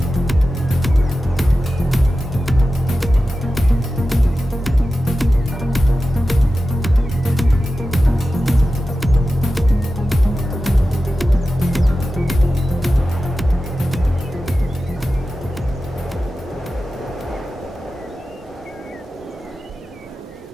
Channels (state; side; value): normal; both; correlation 0.93